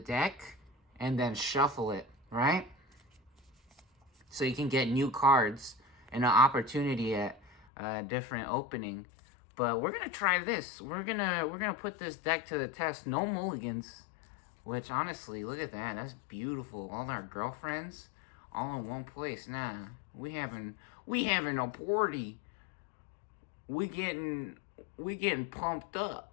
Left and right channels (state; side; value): drops out; right; at 7.5 s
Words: and then shuffle it, right? So you can get new cards and an opportunity at a different opening. But we're gonna try this. We're gonna put this deck to the test. No mulligans. Which honestly, look at that. That's beautiful. All our girlfriends all in one place. Nah, we having a party. We getting pumped